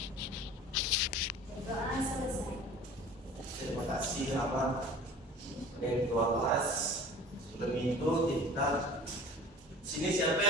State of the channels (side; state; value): both; normal; correlation 0.42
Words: Berdoa selesai. Terima kasih Abang ketua kelas. Sebelum itu kita sini siapa